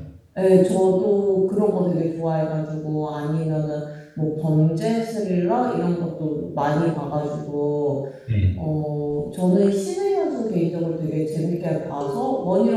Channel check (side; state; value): both; identical; correlation 1.00